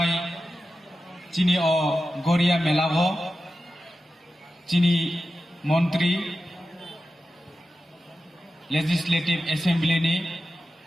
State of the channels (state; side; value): normal; both; correlation 0.92